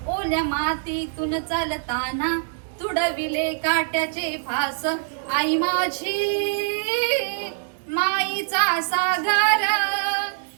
ओल्या मातीतून चालताना, तुडविले काट्याचे फास. आई माझी माईचा सागर,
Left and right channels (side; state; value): left; silent; digital silence